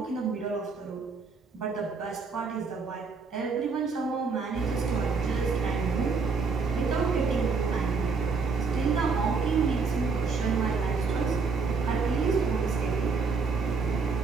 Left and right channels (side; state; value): left; quieter; 4.7 dB